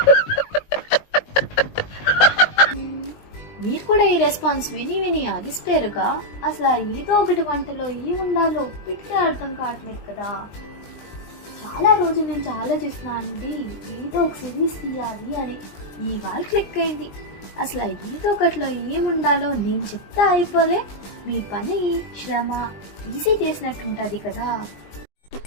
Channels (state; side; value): late; right; 20 ms